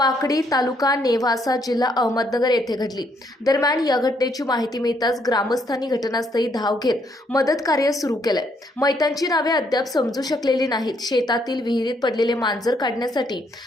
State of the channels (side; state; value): both; normal; correlation 0.71